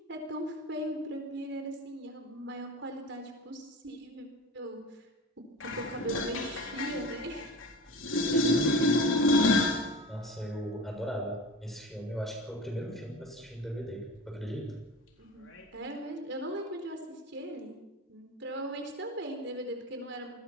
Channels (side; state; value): both; normal; correlation 0.34